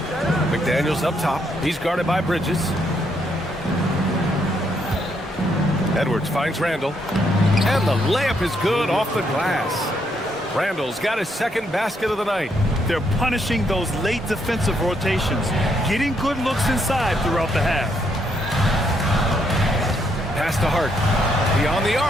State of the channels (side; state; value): both; normal; correlation 0.75